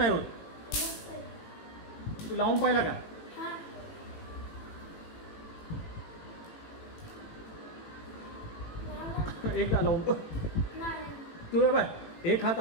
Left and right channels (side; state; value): right; late; 18 ms